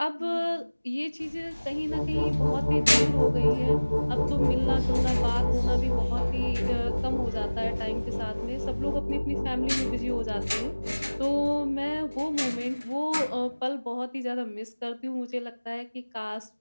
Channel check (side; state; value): both; inverted; correlation -1.00